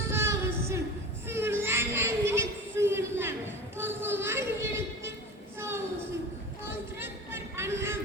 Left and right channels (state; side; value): normal; both; correlation 0.34